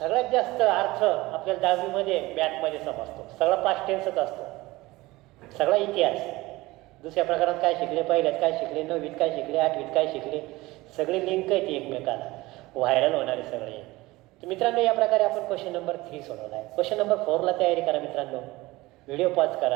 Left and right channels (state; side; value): quieter; left; 20.0 dB